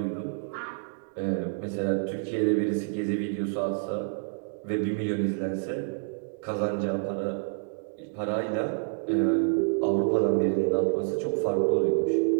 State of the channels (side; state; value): left; silent; digital silence